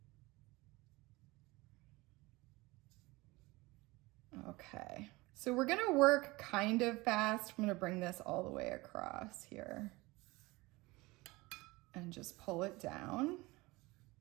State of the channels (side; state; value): left; quieter; 22.2 dB